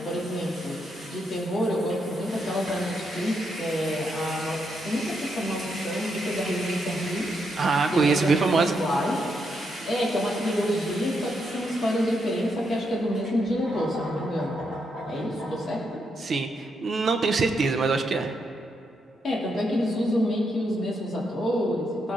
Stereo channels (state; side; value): normal; both; correlation 0.80